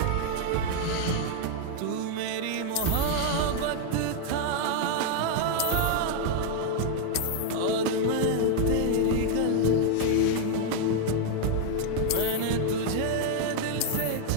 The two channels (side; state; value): both; different; correlation 0.00